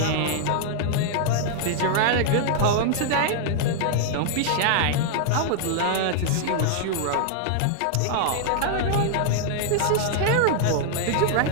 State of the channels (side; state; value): both; different; correlation 0.00